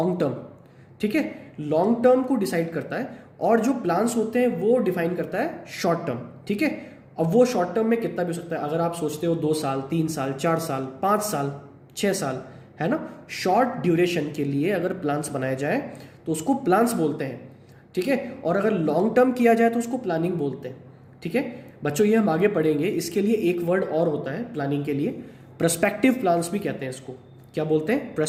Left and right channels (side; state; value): both; identical; correlation 1.00